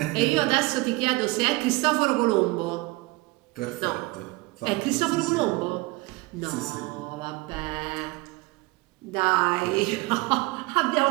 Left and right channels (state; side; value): quieter; left; 22.5 dB